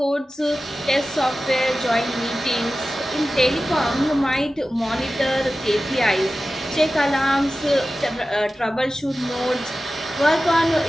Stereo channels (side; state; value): both; normal; correlation 0.95